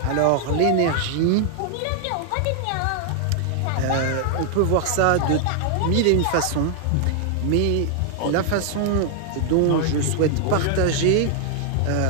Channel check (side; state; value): both; different; correlation 0.00